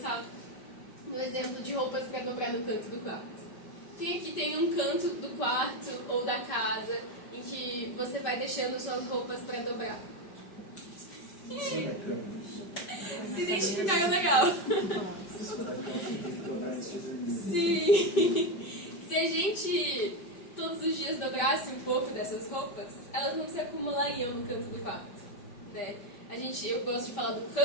no exemplo de roupas para dobrar no canto do quarto. Quem aqui tem um canto do quarto ou da casa em que você vai deixando suas roupas para dobrar? Sim, da cama. Se identificaram legal. Sim. Se a gente todos os dias dobrasse um pouco dessas roupas, elas não se acumulariam no canto do quarto, né? Eu gosto de falar do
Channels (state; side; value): late; right; 5.1 ms